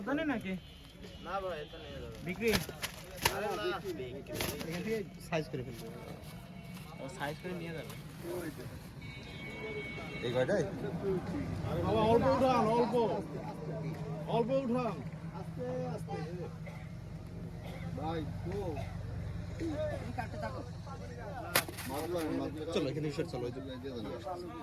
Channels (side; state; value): both; identical; correlation 1.00